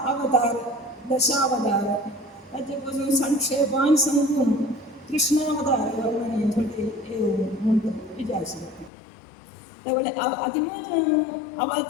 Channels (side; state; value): right; drops out; at 8.9 s